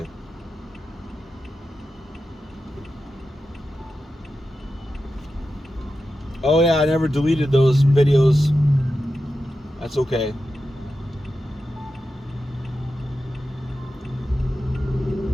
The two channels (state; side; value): normal; both; correlation 0.91